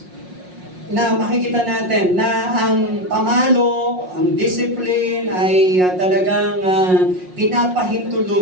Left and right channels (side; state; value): left; late; 5.5 ms